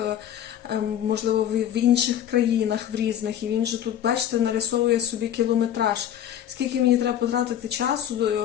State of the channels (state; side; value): quieter; right; 10.4 dB